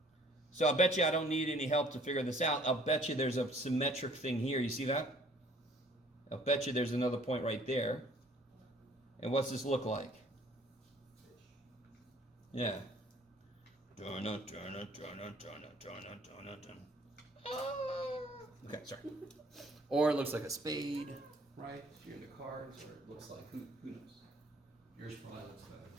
So I'll bet you I don't need any help to figure this out. I'll bet you there's a symmetric thing here. You see that? I'll bet you there's another point right there. And what's this look like? Yeah. Okay, sorry. Or it looks like a spade, right? If you're into cards, or it looks like, who knows? Yours probably looks better.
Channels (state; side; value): normal; both; correlation 0.57